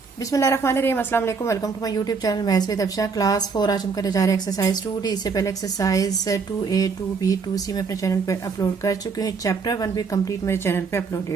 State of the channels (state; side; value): quieter; left; 5.1 dB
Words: बिस्मिल्लाहिर्रहमानिर्रहीम, अस्सलाम वालेकुम। Welcome to my YouTube channel maths with Afsha. Class 4 आज हम करने जा रहे हैं एक्सरसाइज 2D। इससे पहले एक्सरसाइज 2A, 2B, 2C में अपने चैनल पे अपलोड कर चुके हैं। चैप्टर 1 भी कंप्लीट मेरे चैनल पे